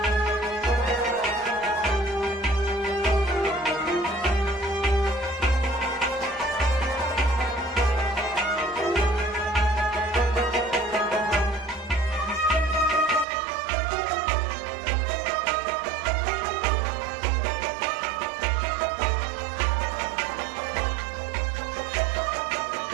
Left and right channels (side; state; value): left; drops out; at 13.2 s